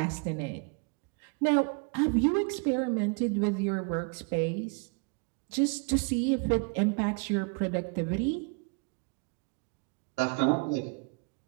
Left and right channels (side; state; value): left; quieter; 33.5 dB